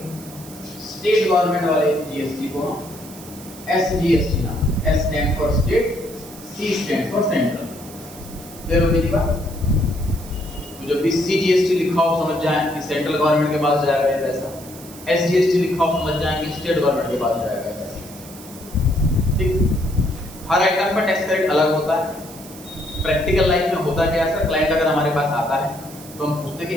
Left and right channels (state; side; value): noise; right; hiss, 17 dB below the sound